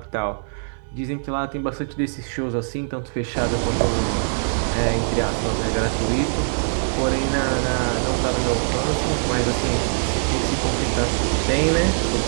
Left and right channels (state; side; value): silent; left; digital silence